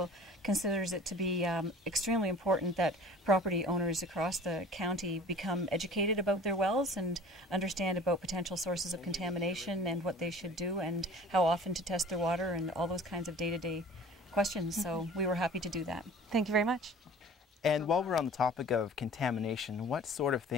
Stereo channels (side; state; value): both; normal; correlation 0.45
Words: considers it to be extremely important that property owners across the county become educated about their wells and understand about potential sources of contamination and what they should do and how often to test their water and all those kinds of day-to-day questions. So we were happy to do that. Thank you very much. And while we're on the topic of contamination, what sort of